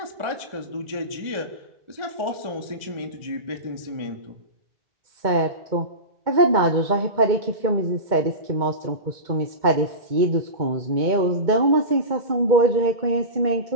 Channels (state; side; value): late; left; 2.2 ms